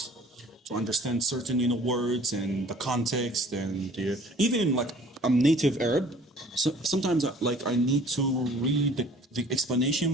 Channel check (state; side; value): normal; both; correlation 0.51